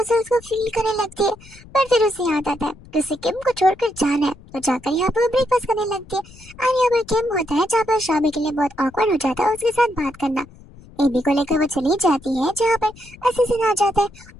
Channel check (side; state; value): left; noise; rumble, 22 dB below the sound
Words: को फील करने लगती है पर फिर उसे याद आता है कि उसे किम को छोड़कर जाना है तो जाकर यहाँ पर ब्रेकफास्ट करने लगती है और यहाँ पर किम होता है जहाँ पर शाबी के लिए बहुत ऑकवर्ड हो जाता है उसके साथ बात करना। एबी को लेकर वो चली जाती है जहाँ पर असिस्टेंट आ जाता है